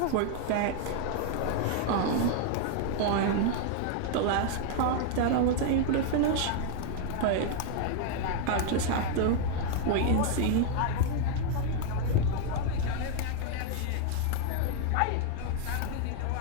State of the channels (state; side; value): different; both; correlation 0.00